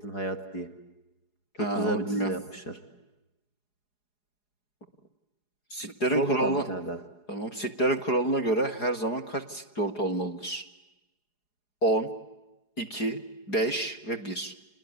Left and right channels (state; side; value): late; right; 4.8 ms